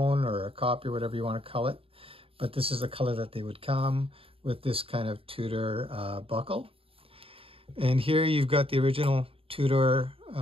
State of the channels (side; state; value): left; late; 0.27 ms